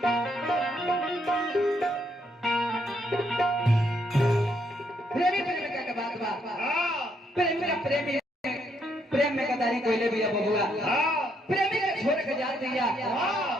प्रेम में गदारी कोइले भी अब हुआ प्रेमी के छोड़ के जा दिया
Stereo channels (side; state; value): both; normal; correlation 0.74